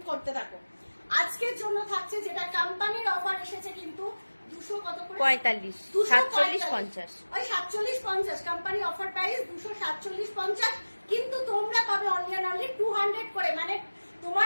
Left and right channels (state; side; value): inverted; both; correlation -1.00